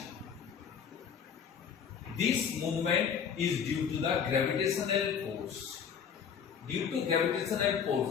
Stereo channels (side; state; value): right; quieter; 7.2 dB